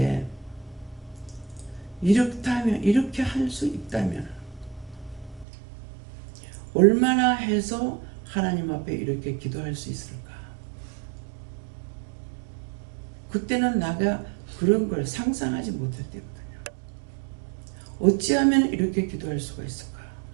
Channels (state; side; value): drops out; left; at 5.5 s